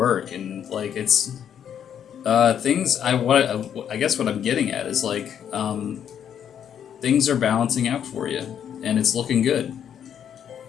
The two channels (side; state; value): right; quieter; 9.0 dB